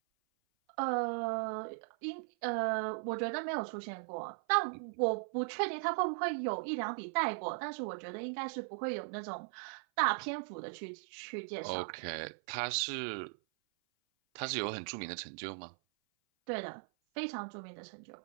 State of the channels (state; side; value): silent; left; 52 dB below the other